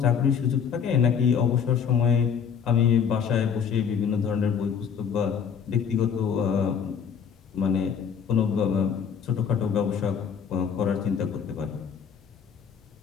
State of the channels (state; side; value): quieter; right; 7.2 dB